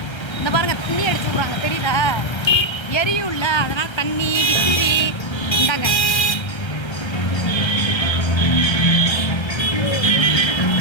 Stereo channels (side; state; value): right; late; 1.3 ms